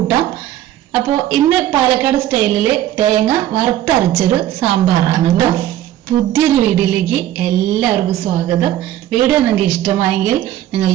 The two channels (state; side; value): quieter; left; 12.8 dB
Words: അപ്പോൾ ഇന്ന് പാലക്കാട് സ്റ്റൈലില് തേങ്ങ വറുത്തരച്ചൊരു സാമ്പാറാണ് കേട്ടോ. പുതിയൊരു വീഡിയോയിലേക്ക് എല്ലാവർക്കും സ്വാഗതം. വീഡിയോ നിങ്ങൾക്ക് ഇഷ്ടമായെങ്കിൽ നിങ്ങൾ